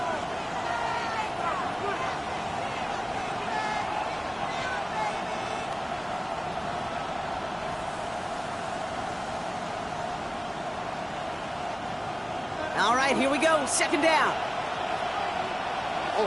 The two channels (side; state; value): both; identical; correlation 1.00